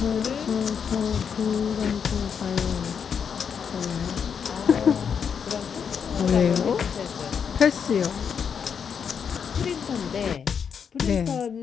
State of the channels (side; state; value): right; quieter; 7.0 dB